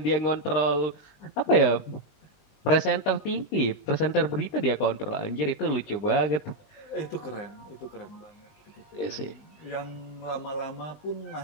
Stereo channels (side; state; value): right; late; 20 ms